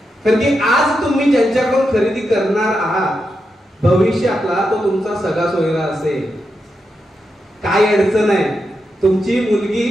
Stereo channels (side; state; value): both; normal; correlation 0.86